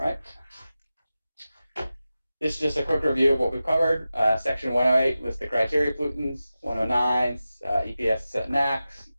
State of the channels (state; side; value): inverted; both; correlation -0.94